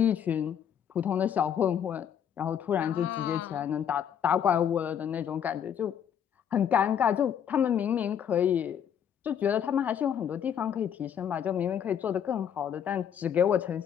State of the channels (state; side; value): quieter; right; 8.7 dB